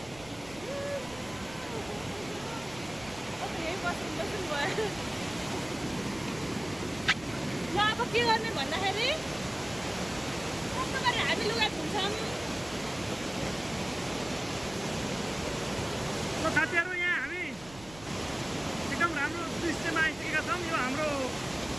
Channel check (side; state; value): right; noise; rumble, 19 dB below the sound